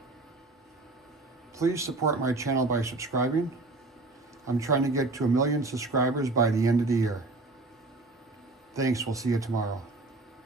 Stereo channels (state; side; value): quieter; left; 3.2 dB